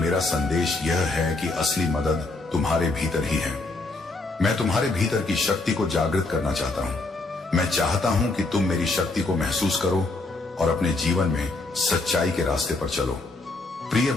संदेश यह है कि असली मदद तुम्हारे भीतर ही है। मैं तुम्हारे भीतर की शक्ति को जागृत करना चाहता हूँ। मैं चाहता हूँ कि तुम मेरी शक्ति को महसूस करो और अपने जीवन में सच्चाई के रास्ते पर चलो। प्रिय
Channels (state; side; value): quieter; right; 3.2 dB